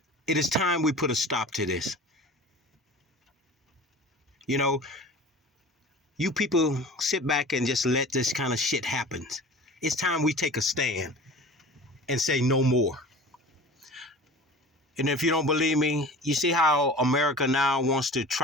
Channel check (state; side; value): normal; both; correlation 0.39